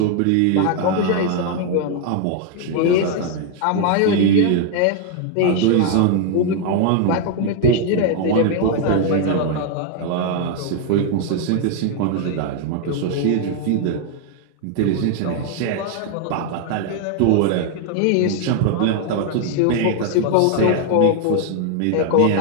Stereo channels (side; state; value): both; different; correlation 0.00